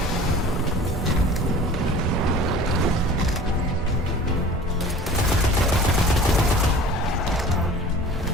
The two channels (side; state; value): both; normal; correlation 0.43